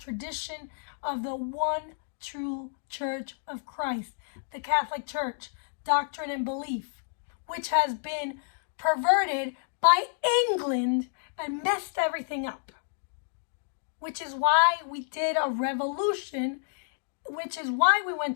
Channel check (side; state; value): right; silent; digital silence